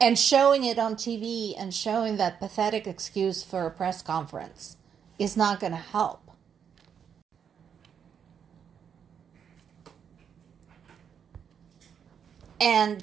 showing it on TV and showing that pathetic excuse for a press conference is not going to help.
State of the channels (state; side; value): quieter; left; 7.7 dB